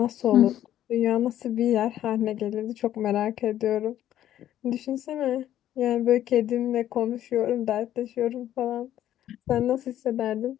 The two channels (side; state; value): right; quieter; 11.9 dB